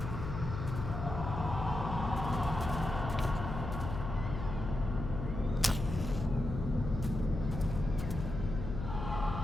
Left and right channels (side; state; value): left; noise; hum, 5 dB below the sound